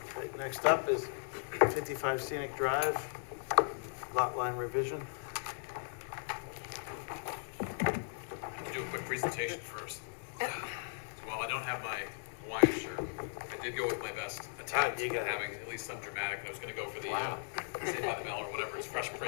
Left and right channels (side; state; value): right; silent; 53 dB below the other